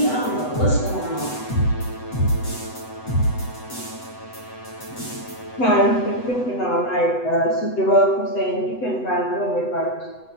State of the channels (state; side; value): late; right; 8.0 ms